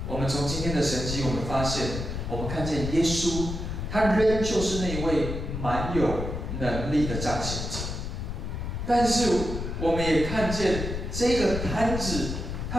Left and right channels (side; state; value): left; noise; rumble, 5 dB below the sound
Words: 我们从今天的神迹，我们发现，我们看见耶稣。他仍旧是那位蛮有能力的彰显者，但是我们也看见这个摊子，他